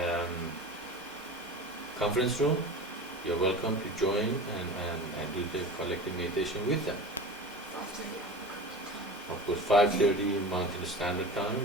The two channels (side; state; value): both; normal; correlation 0.33